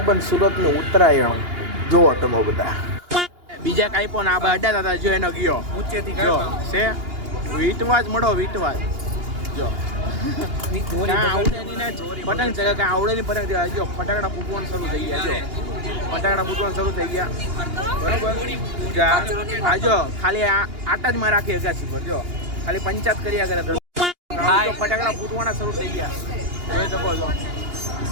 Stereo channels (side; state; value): left; late; 2.8 ms